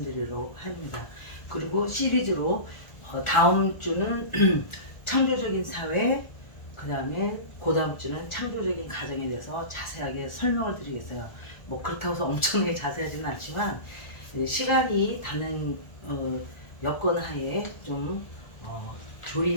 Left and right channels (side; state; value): right; late; 1.4 ms